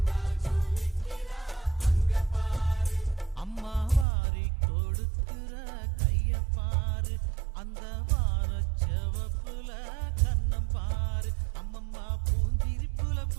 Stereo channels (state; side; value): drops out; left; at 4.0 s